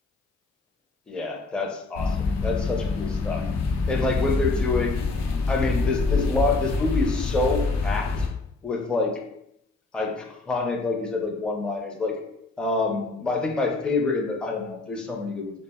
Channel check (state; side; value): quieter; right; 3.2 dB